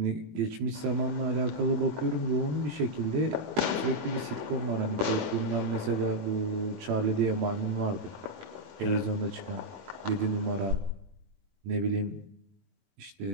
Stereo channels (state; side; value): late; left; 21 ms